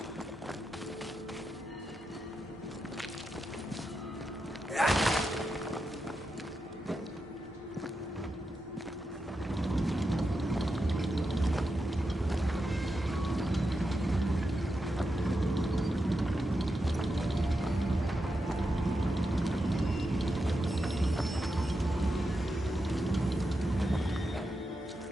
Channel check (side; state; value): both; normal; correlation 0.87